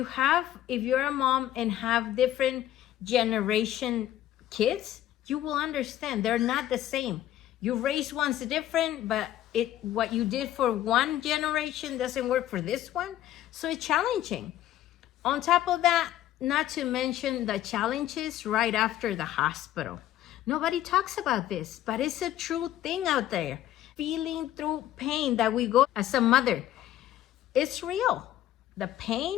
a mom and have different generation kids, you will understand they're not the same. You raise one's different, but what you did for one generation doesn't work for this one. So it's challenging. On top of that, not to mention the challenges right after the hospital. Nobody talks about this, but it's a true thing out there. Feeling through pain that we go as a mother, it's real. The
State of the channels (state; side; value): quieter; right; 12.9 dB